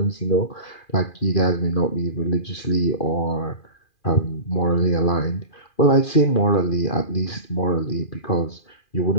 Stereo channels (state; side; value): late; right; 2.4 ms